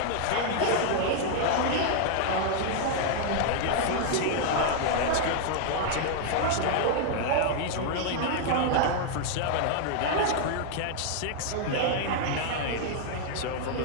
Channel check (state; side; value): different; both; correlation -0.01